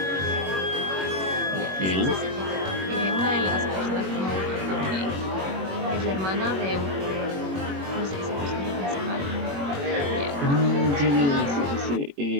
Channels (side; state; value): left; late; 21 ms